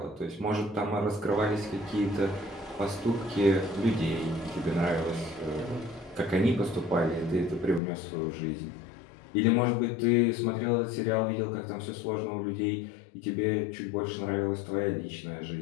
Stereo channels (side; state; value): right; drops out; at 7.8 s